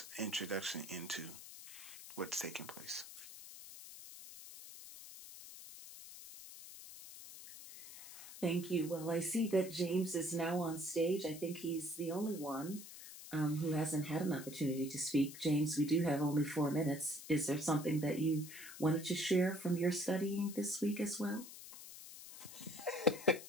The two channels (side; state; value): left; noise; hiss, 14 dB below the sound